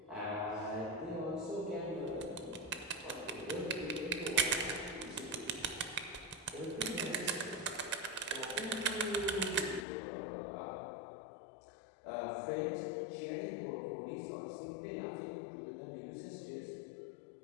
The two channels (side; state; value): right; drops out; at 9.9 s